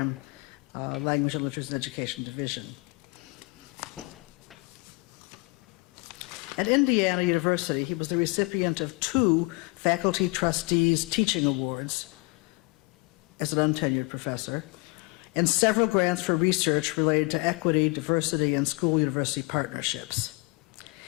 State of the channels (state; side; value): quieter; right; 27.2 dB